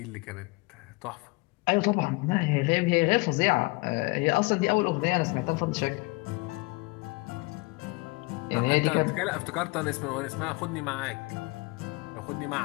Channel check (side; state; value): right; quieter; 26.1 dB